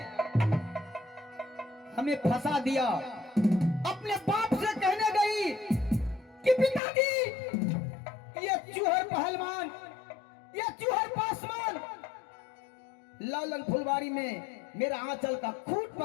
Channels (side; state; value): right; drops out; at 6.8 s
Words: हमें फंसा दिया। अपने बाप से कहने गई कि पिताजी ये चूहर पहलवान, ये चूहर पासवान लालन फुलवारी में मेरा आंचल का खूंट